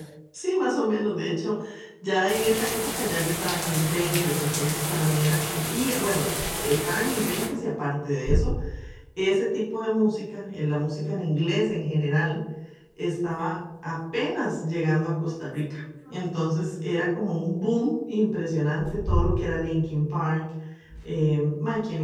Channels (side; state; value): both; identical; correlation 1.00